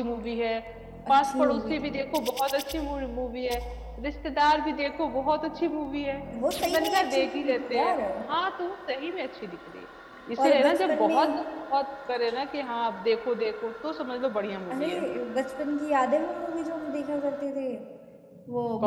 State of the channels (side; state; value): both; identical; correlation 1.00